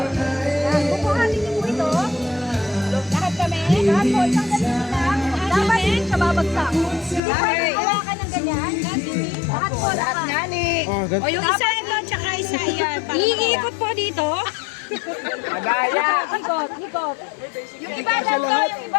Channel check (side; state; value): right; drops out; at 7.2 s